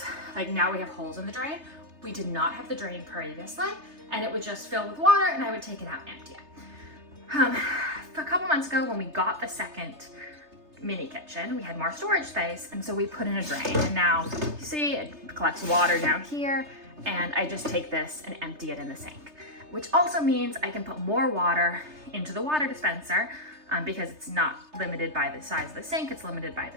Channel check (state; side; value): late; left; 3.3 ms